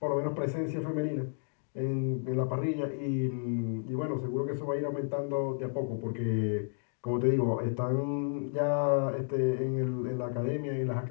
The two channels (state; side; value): silent; right; digital silence